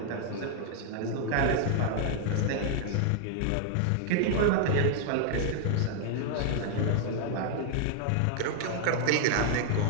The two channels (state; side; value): different; both; correlation 0.00